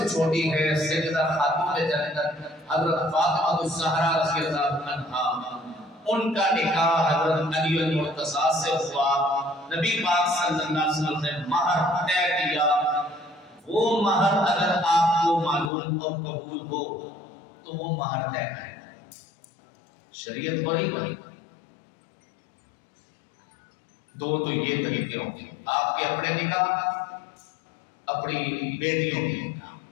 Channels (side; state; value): right; drops out; at 15.7 s